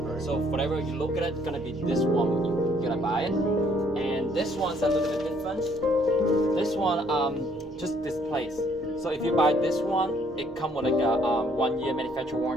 So whatever you look at it, it's gonna be this one. You're gonna buy it, and this one's a little bit different. This one just displays. So if you buy this one, it comes with like a 1-year manufacturer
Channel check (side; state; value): both; normal; correlation 0.65